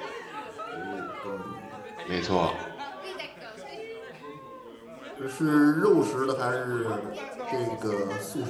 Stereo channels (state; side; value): identical; both; correlation 1.00